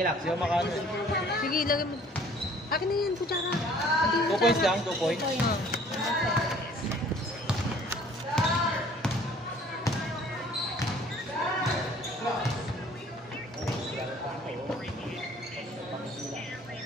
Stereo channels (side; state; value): both; normal; correlation 0.54